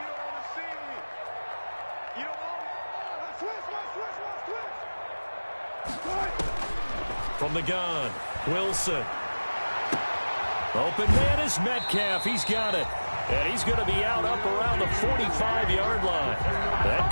From the gun, Wilson. Open man is Metcalf. He's got it. And he's going to be out up around the 45-yard line. That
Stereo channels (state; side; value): inverted; both; correlation -1.00